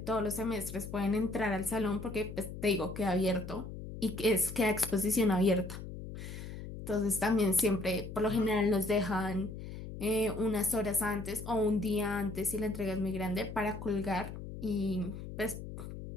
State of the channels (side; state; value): left; noise; hum, 10 dB below the sound